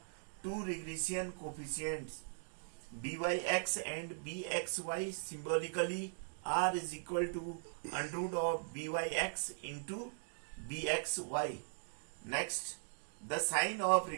two regression coefficients byx and bxy. Symbolically, r is equal to under root of byx into bxy. Next, the sign of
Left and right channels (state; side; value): silent; left; digital silence